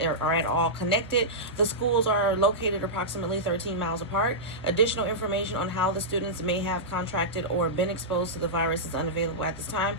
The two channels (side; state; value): both; normal; correlation -0.13